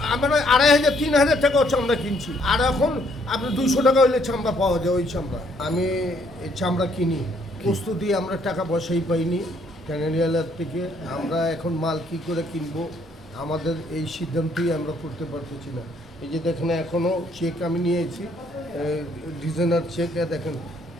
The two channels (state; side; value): normal; both; correlation 0.67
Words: আমরা 2500 3000 টাকাও চামড়া কিনছি, আর এখন আপনি 200 টাকা হইলে চামড়া পাওয়া যায়। ওই চামড়া আমি এই চামড়া কিনি, প্রস্তুতি আমরা টাকা পয়সাই পাইনি ক্যানাডিয়ালার থেকে। আমরা এখন মাল কি করে কিনবো আমাদের এই সিদ্ধান্তই আমরা করতে পারতেছি না। এই যে দেখেন এখনও চেক আমি নিয়েছি, ডিজাইনার চেক, দেখেন